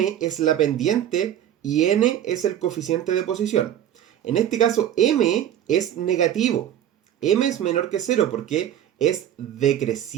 es la pendiente y n es el coeficiente de posición. En este caso, m es negativo. M es menor que 0 porque es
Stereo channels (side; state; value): left; quieter; 10.9 dB